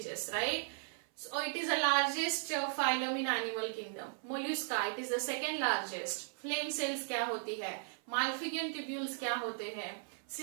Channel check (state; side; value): silent; left; 53 dB below the other